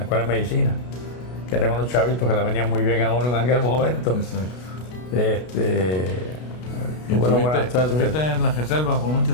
escuela de medicina, que eran unos chavitos que le venían muy bien a uno en aquel momento. Exacto. ¿Y Tuve una buena estuviste suerte. en la reserva por muchos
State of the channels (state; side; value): late; right; 32 ms